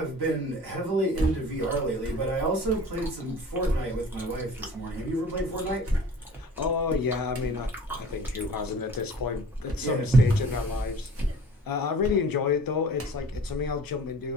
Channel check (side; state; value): both; normal; correlation 0.46